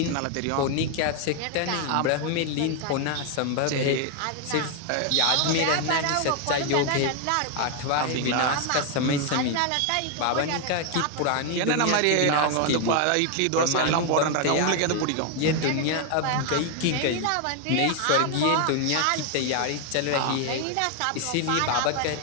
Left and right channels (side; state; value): both; different; correlation 0.01